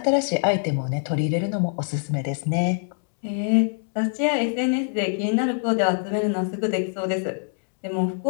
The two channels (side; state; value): right; silent; digital silence